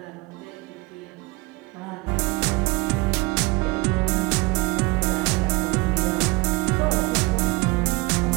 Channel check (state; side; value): quieter; left; 23.6 dB